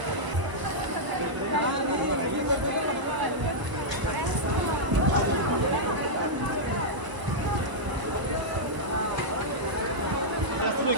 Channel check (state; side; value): late; left; 1.0 ms